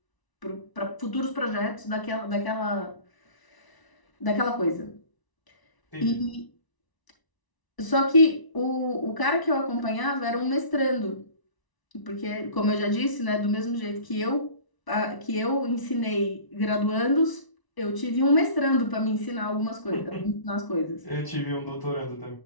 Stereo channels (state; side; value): late; right; 1.0 ms